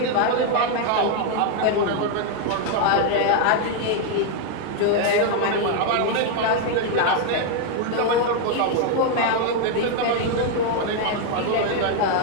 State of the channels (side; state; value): both; different; correlation 0.00